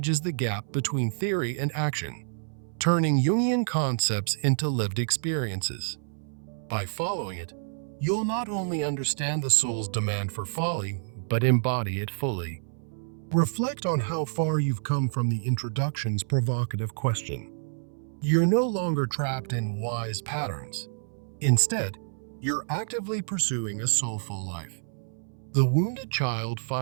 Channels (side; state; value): left; silent; 59 dB below the other